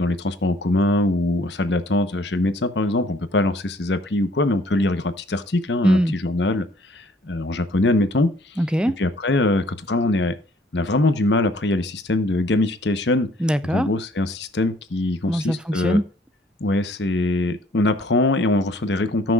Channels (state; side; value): normal; both; correlation 0.60